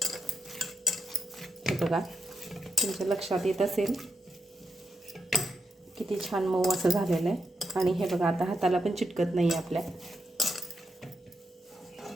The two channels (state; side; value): normal; both; correlation 0.84